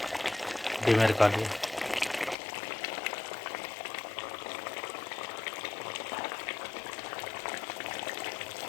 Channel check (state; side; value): drops out; right; at 2.4 s